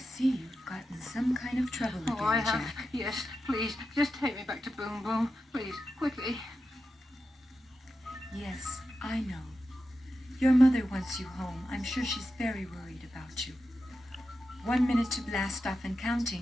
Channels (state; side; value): normal; both; correlation 0.90